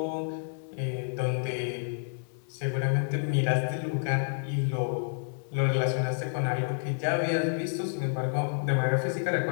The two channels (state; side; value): silent; right; digital silence